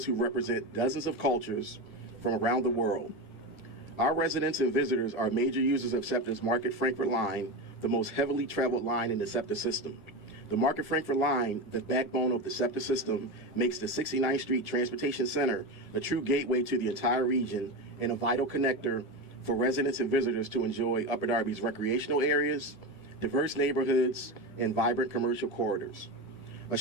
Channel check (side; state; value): right; late; 10 ms